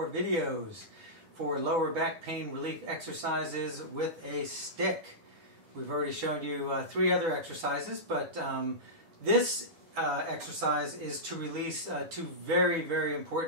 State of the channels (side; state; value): left; late; 10 ms